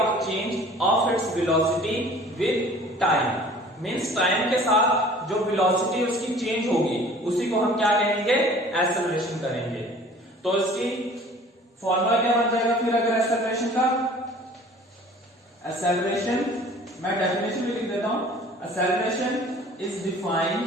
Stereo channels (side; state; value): both; normal; correlation 0.48